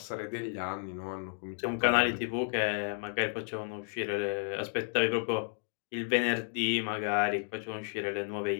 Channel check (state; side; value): silent; right; 56 dB below the other